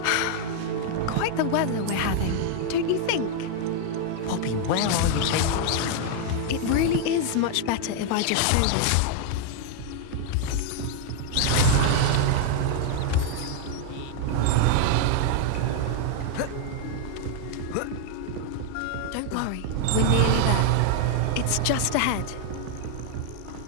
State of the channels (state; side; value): different; both; correlation 0.00